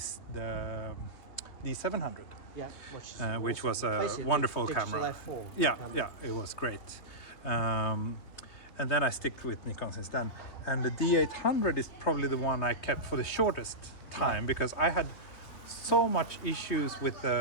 the D700. Yeah, Which was a basically wonderful digital camera. F4 Yeah, camera. yeah, it was great. And then I stick with Nikon since then. And the D800 is probably the one I kept for the shortest time because I had so much issues with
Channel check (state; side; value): late; right; 3.2 ms